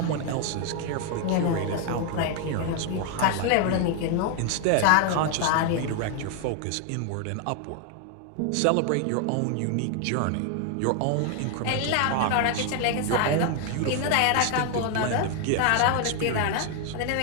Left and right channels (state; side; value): different; both; correlation 0.01